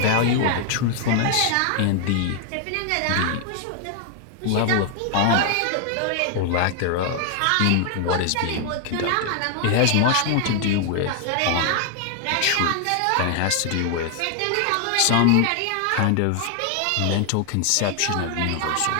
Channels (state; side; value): different; both; correlation 0.00